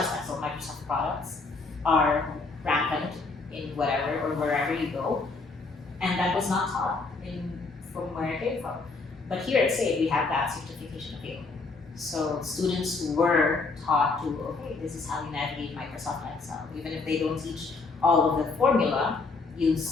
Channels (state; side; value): quieter; right; 3.9 dB